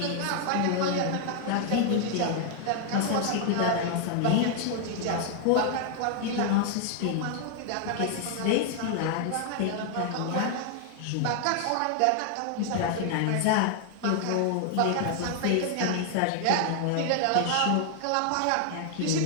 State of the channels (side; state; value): both; different; correlation 0.00